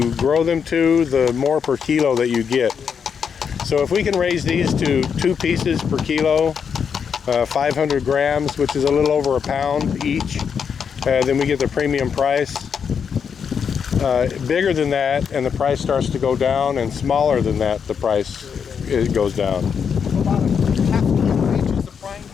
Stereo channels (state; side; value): quieter; right; 6.9 dB